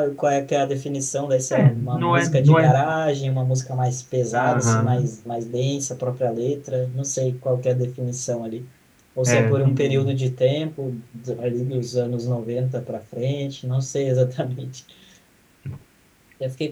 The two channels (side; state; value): both; identical; correlation 1.00